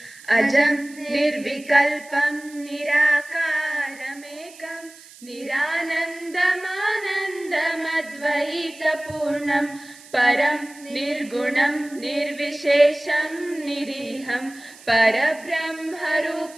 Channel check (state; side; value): noise; right; hiss, 21 dB below the sound